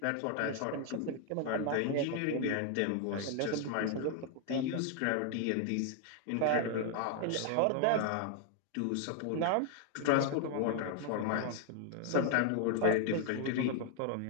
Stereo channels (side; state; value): both; different; correlation 0.00